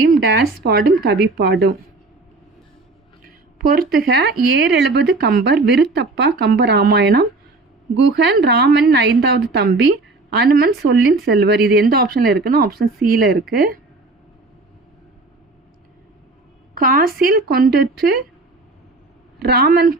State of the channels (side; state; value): left; quieter; 3.3 dB